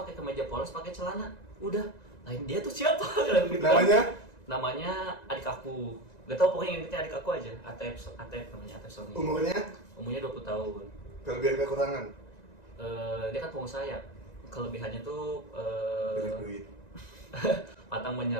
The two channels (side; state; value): right; late; 1.9 ms